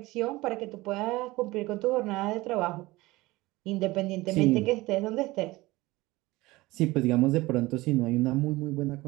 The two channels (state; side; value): quieter; left; 20.1 dB